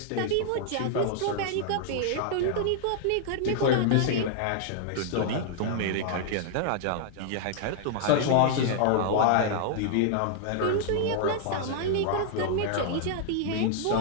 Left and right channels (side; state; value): both; different; correlation -0.01